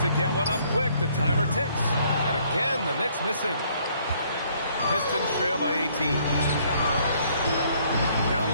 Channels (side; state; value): both; inverted; correlation -0.64